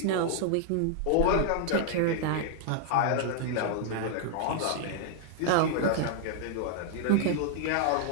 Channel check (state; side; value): different; both; correlation -0.01